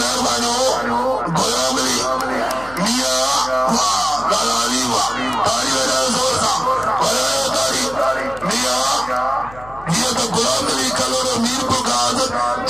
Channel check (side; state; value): left; noise; hum, 20 dB below the sound